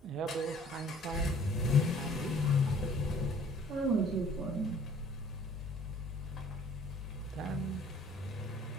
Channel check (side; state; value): both; normal; correlation 0.55